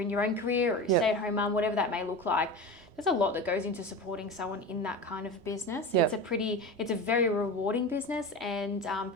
your own career or a stay-at-home mum, whatever that may look like, there's a lot that goes into supporting someone in that kind of business. It's a very rewarding business, and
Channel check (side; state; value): left; late; 3.1 ms